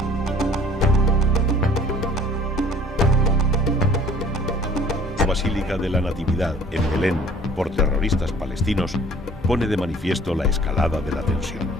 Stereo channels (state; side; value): normal; both; correlation 0.52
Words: La Basílica de la Natividad en Belén por terroristas palestinos pone de manifiesto la escalada de la tensión.